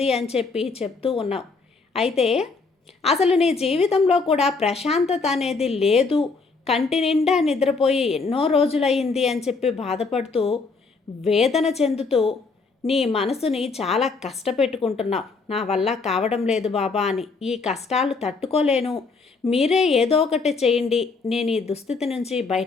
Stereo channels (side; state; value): right; quieter; 4.3 dB